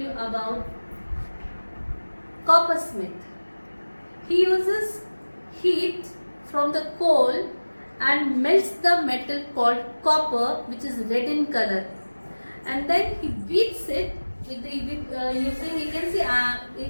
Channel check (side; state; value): both; inverted; correlation -1.00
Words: about coppersmith. He uses heat from the coal and melts the metal called copper, which is red in color, and then he beats it with using, you can see a